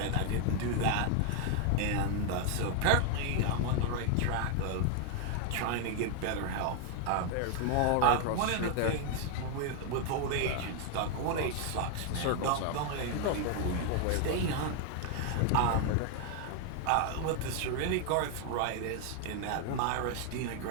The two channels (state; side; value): different; both; correlation 0.00